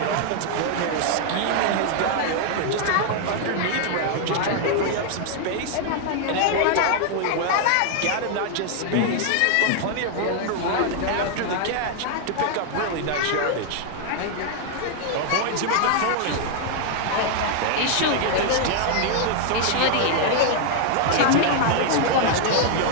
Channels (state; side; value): different; both; correlation 0.00